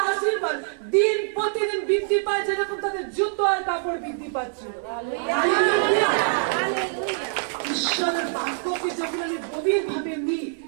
আশীর্বাদ দিন প্রতিদিন বৃদ্ধি পায়, যেরকম তাদের জুতো আর কাপড় বৃদ্ধি পাচ্ছিল। ঈশ্বরের বাক্যকে যখন আমি গভীর ভাবে নিই,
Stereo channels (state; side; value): silent; left; digital silence